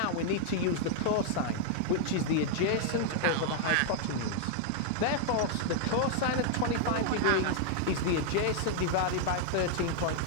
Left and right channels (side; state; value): both; different; correlation 0.00